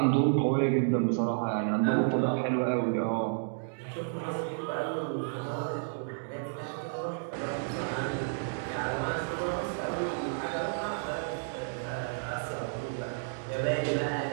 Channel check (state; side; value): silent; left; digital silence